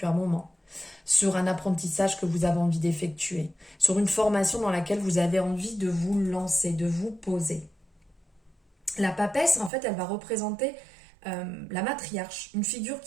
un moment. Sur un apprentissage que vous avez envie d'effectuer, sur une formation dans laquelle vous avez envie de vous lancer, de vous poser. La papesse, en fait, elle va représenter la matriarche, une figure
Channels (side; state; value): left; drops out; at 9.7 s